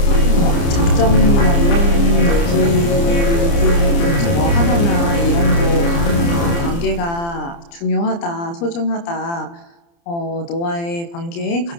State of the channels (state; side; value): late; right; 29 ms